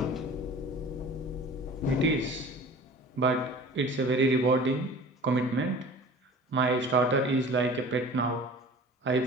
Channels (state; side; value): normal; both; correlation 0.42